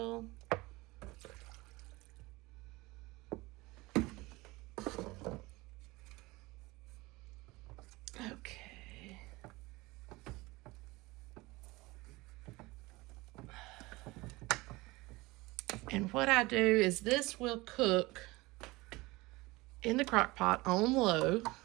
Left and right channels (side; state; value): left; quieter; 21.8 dB